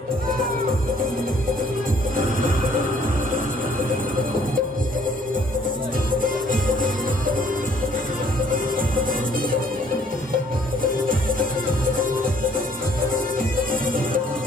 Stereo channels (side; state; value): both; normal; correlation 0.61